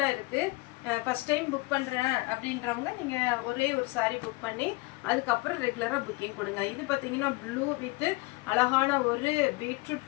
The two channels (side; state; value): right; quieter; 23.7 dB